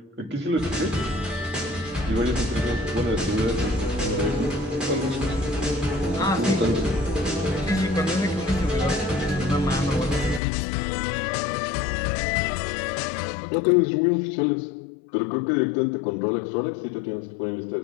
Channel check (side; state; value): right; drops out; at 10.4 s